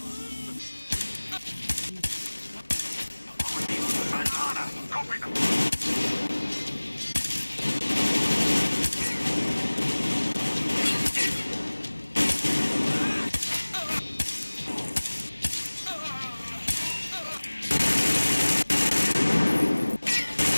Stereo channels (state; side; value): inverted; both; correlation -1.00